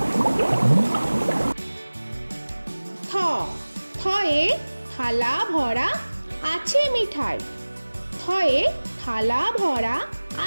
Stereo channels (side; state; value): both; inverted; correlation -1.00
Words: থ, থয়ে থালা ভরা আছে মিঠাই। থয়ে থালা ভরা